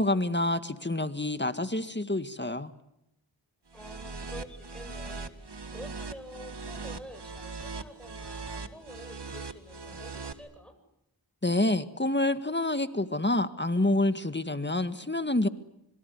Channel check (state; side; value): normal; both; correlation 0.38